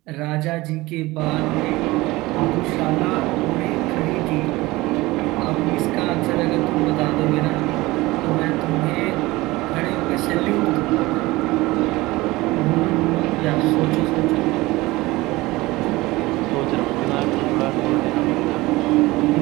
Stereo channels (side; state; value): left; quieter; 20.2 dB